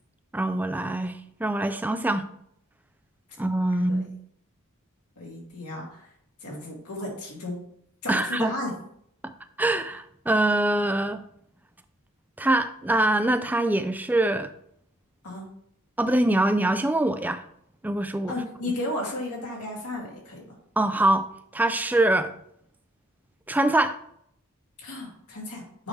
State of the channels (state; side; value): normal; both; correlation 0.76